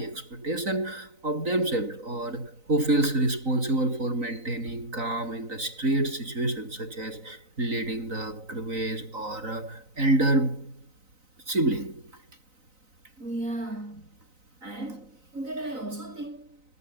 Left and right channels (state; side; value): late; left; 3.9 ms